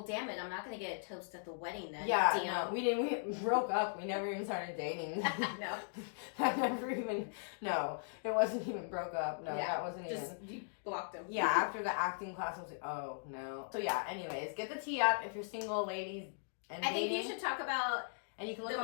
damn it, I'm not gonna get a toast at the wedding then. Yeah, no, we broke up. We never even started dating. No. No, it wasn't even broke up. No, that wasn't just even. You blocked him. Yeah, after the acting class, I was like, oh no. So yeah, anyways, get the tea up if you're single, ladies. And I think you should talk about and you can look the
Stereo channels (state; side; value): silent; right; digital silence